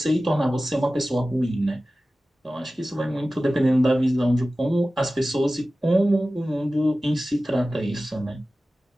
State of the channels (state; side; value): normal; both; correlation 0.96